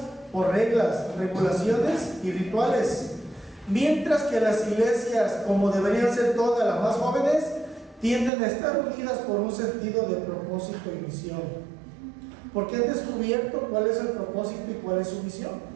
por reglas, regulaciones y rituales, mientras que las iglesias, como deberían ser todas las más jóvenes, tienden a estar unidas por un sentido de propósito y misión, porque han descubierto cuál es el propósito y cuál es su misión.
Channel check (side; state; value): left; drops out; at 8.3 s